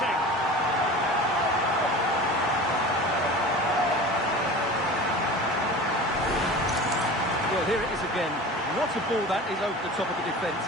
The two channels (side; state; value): both; normal; correlation 0.36